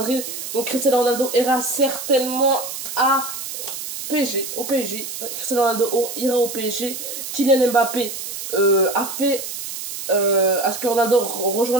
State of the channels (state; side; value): noise; right; hiss, 7 dB below the sound